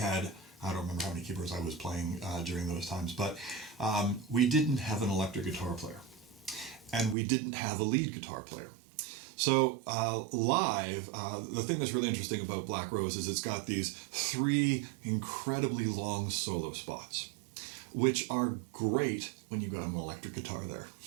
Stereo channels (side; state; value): left; drops out; at 7.2 s